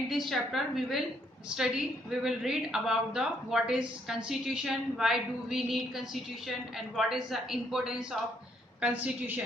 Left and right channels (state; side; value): normal; both; correlation 0.71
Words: this chapter we will read about the what is constitution, why do we need constitution and what is the importance of